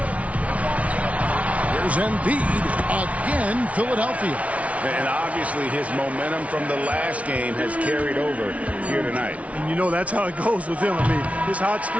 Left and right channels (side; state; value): left; late; 0.065 ms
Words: Here's Embiid again, Philadelphia. And obviously his momentum from the last game has carried over here tonight. And you know that's how it goes with him. I mean, his hot